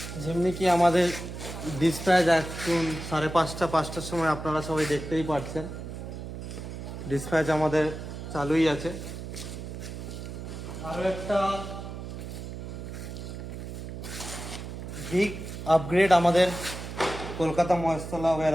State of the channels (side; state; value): right; noise; hum, 9 dB below the sound